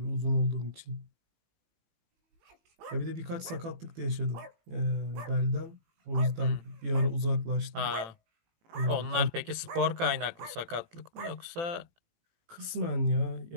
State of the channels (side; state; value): left; late; 18 ms